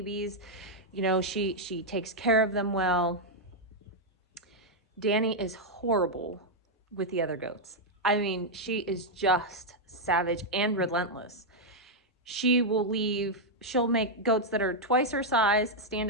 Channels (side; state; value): both; normal; correlation -0.03